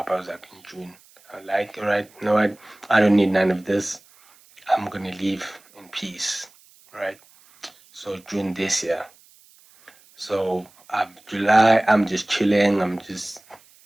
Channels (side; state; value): right; noise; hiss, 28 dB below the sound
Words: I was like in June. I was like, all right, you know what? I don't need none of this. I'm gonna leave in peace, right? So June this year. So July, I'm just chilling. I'm just